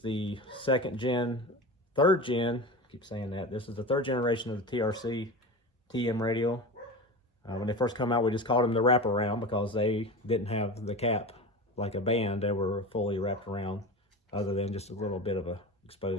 third gen, I keep saying that. This is the 3rd generation of the TRC TM radial. When they first come out, we just called them the wraparound because they didn't have the cap like a band. They were fully wrapped around, other than just a little bit of a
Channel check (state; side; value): normal; both; correlation 0.28